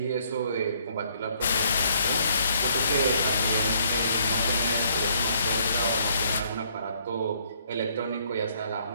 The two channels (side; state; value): both; inverted; correlation -0.66